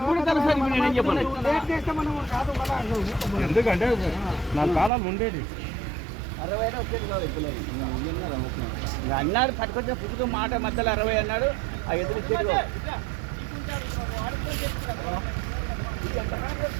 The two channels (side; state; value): left; drops out; at 4.9 s